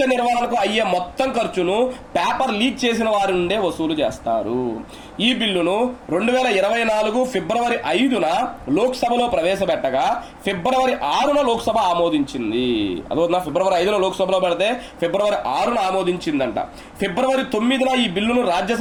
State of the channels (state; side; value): identical; both; correlation 1.00